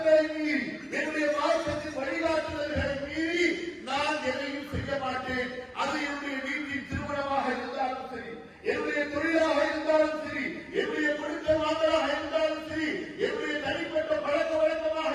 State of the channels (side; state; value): both; identical; correlation 1.00